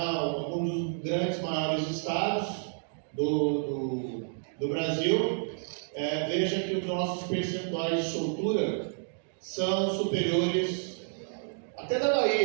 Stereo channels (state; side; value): silent; left; digital silence